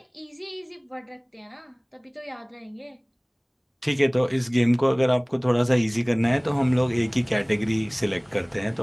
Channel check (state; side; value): identical; both; correlation 1.00